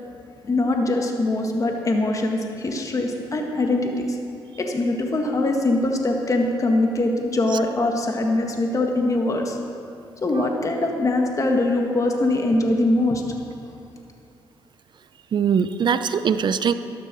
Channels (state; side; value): normal; both; correlation 0.74